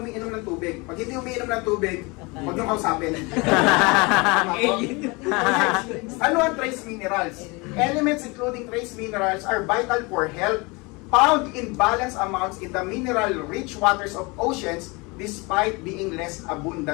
umiinom ng tubig. Pag hindi umiinom ng tubig, huwag niyong kausapin. Ano ang trace minerals? Elements including trace minerals are vital for health, found in balanced amounts in the mineral-rich waters of oceans despite being less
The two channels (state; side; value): quieter; right; 26.8 dB